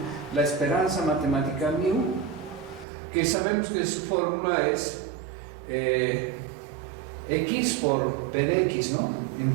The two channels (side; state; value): left; drops out; at 2.9 s